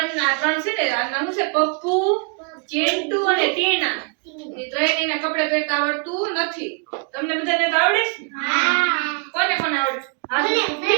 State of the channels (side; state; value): left; quieter; 36.8 dB